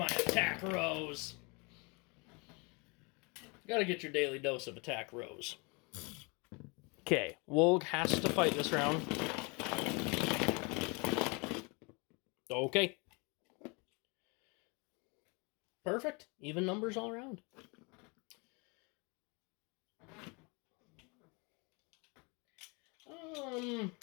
attack Rose. You gotta get your daily dose of attack Rose. Okay, Wolg has to fight this round. Okay. Perfect. Even numbers all around. I'm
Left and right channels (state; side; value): quieter; right; 30.2 dB